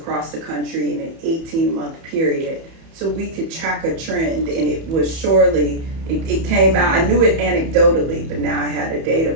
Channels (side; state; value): left; late; 31 ms